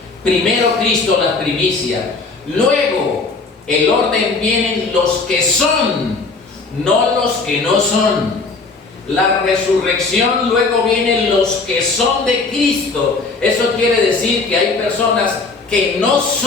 Primero Cristo, las primicias. Luego, el orden vienen los que son, no los que no son. La resurrección, luego vienen los que son de Cristo. Eso quiere decir que hay personas que no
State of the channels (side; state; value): right; quieter; 4.0 dB